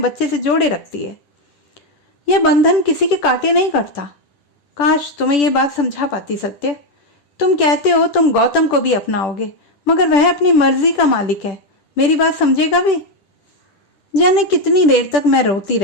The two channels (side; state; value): right; late; 10 ms